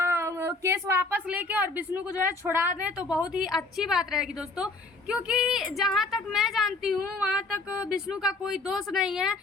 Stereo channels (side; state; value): right; quieter; 3.3 dB